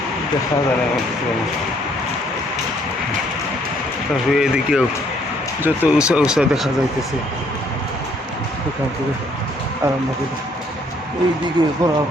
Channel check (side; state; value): both; normal; correlation 0.65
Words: দেখা যায় না। তারপরে এদিকেও যত উঁচা উঁচা দেখা যাইতেছে, সেখান থেকে আরম্ভ করে এইদিকে